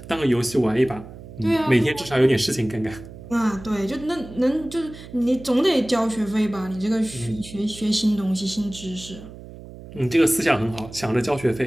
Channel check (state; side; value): noise; right; hum, 16 dB below the sound